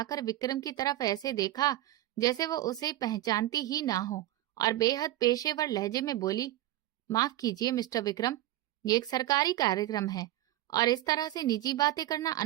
विक्रम की तरफ ऐसे देखा जैसे वो उसे पहचानती ही ना हो और बेहद पेशेवर लहजे में बोली, माफ कीजिए मिस्टर विक्रम, ये एक सरकारी कार्यक्रम है और इस तरह से निजी बातें करना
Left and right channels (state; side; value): quieter; left; 15.1 dB